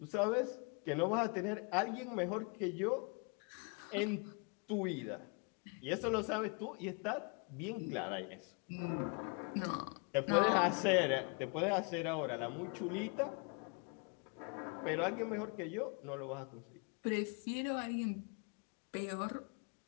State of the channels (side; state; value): right; quieter; 33.9 dB